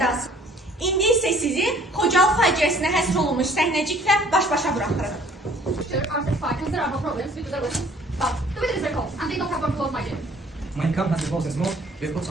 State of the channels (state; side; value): normal; both; correlation 0.56